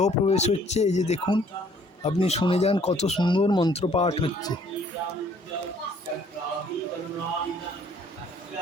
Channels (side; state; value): both; normal; correlation 0.60